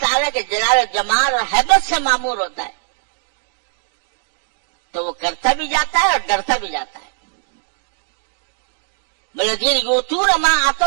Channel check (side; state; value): left; silent; 66 dB below the other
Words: کے جلال و جمال اور ہیبت سے معمور ہوتا ہے، تو وہ کرتا بھی جاتا ہے اور ڈرتا بھی جاتا ہے۔ والذین یؤتون ما